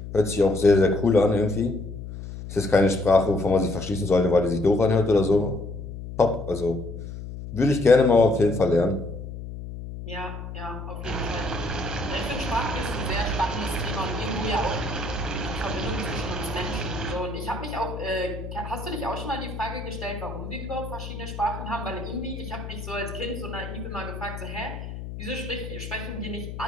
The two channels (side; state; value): left; noise; hum, 9 dB below the sound